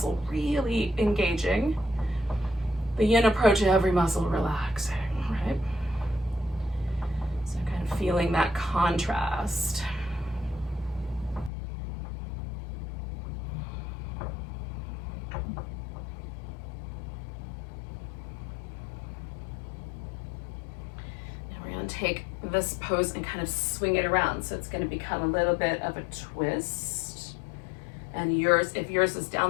really engaging. The yin approach, every muscle relaxing, right? So kind of feeling that contrast. Take this pose and kind of swing it around. So it's going to become a little bit of a twist. And yours, if yours is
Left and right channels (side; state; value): right; drops out; at 11.5 s